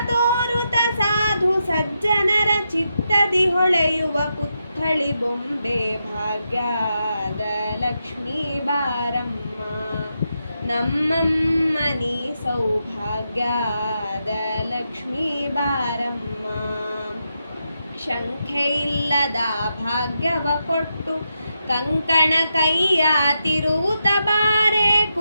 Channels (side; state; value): both; inverted; correlation -0.85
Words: ತೋರುತ ಸಾಧು ಸಜ್ಜನರ ಚಿತ್ತದಿ ಹೊಳೆಯುವ ಪುತ್ಥಳಿ ಬೊಂಬೆ ಭಾಗ್ಯದ ಲಕ್ಷ್ಮೀ ಬಾರಮ್ಮ, ನಮ್ಮಮ್ಮನಿ ಸೌಭಾಗ್ಯದ ಲಕ್ಷ್ಮೀ ಬಾರಮ್ಮ. ಶಂಖೆ ಇಲ್ಲದ ಭಾಗ್ಯವ ಕೊಟ್ಟು ಕಂಕಣ ಕೈಯ ತಿರುವುತ ಬಾರೆ,